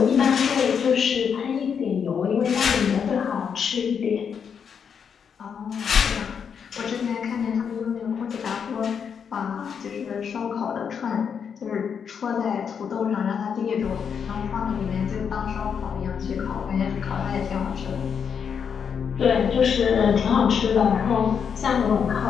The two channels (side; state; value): right; quieter; 7.0 dB